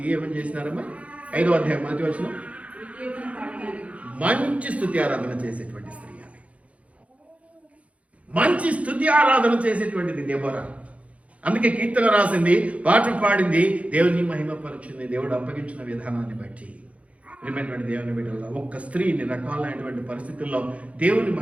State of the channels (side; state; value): left; late; 0.065 ms